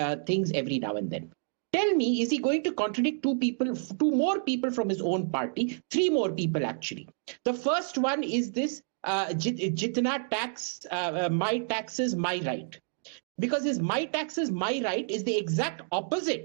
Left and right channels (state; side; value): silent; left; digital silence